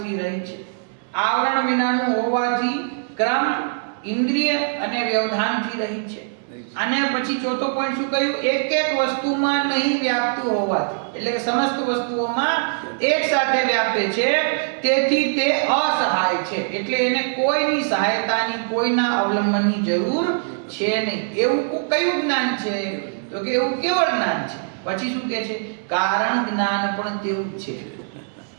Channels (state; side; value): silent; left; 64 dB below the other